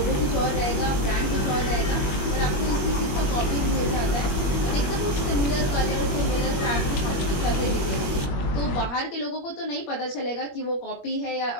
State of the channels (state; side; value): late; right; 21 ms